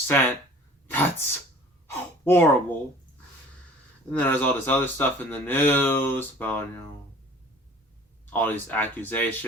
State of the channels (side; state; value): both; normal; correlation 0.47